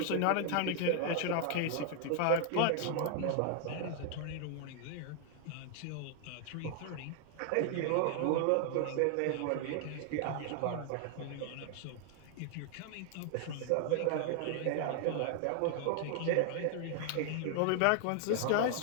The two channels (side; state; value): both; different; correlation 0.00